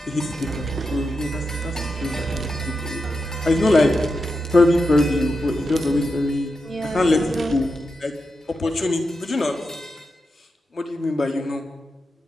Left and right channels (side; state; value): both; normal; correlation 0.88